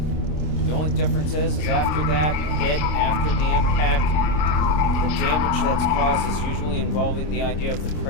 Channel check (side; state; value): right; late; 26 ms